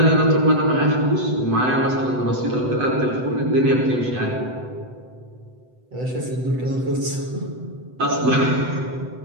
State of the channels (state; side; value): late; left; 7.9 ms